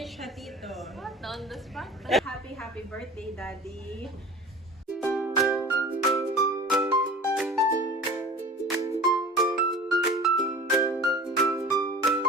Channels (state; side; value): normal; both; correlation 0.39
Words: Hatito. On the spot. Happy birthday, Daddy.